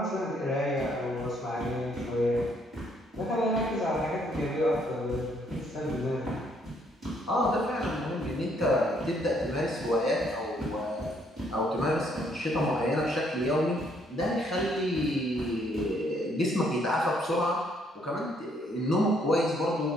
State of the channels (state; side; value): normal; both; correlation 0.68